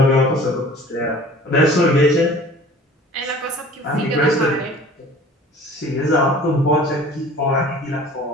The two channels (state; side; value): normal; both; correlation 0.46